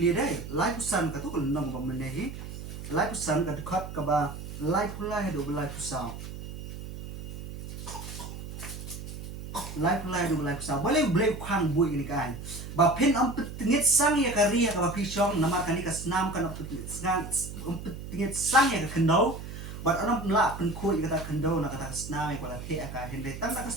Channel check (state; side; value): noise; right; hum, 10 dB below the sound